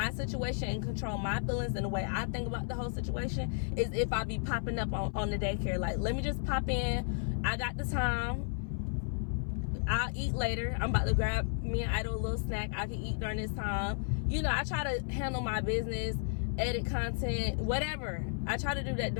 situation and control my feelings and the way I think about the whole situation is if I be popping up on the daycare. Like, let me just pop in. I got the time. I'll eat later. I'm about to grab me and Idol a little snack. I can eat during this time. You know, I try to handle my business, edit content, whatever. I try to do that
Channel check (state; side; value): silent; right; 56 dB below the other